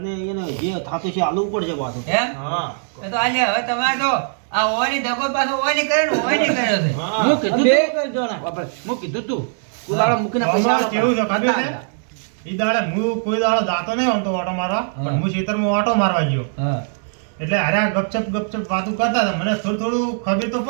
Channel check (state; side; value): silent; left; digital silence